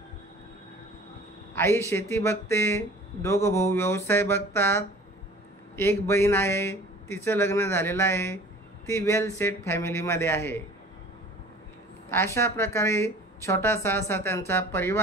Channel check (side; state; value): both; normal; correlation 0.46